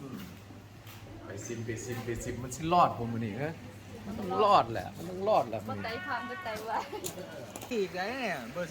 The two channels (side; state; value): both; identical; correlation 1.00